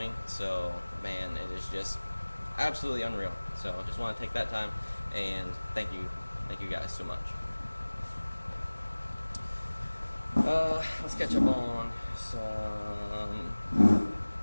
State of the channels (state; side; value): inverted; both; correlation -1.00